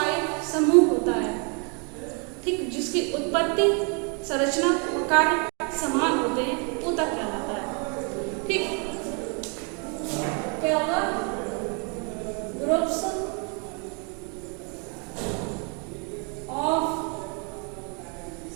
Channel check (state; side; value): quieter; left; 35.8 dB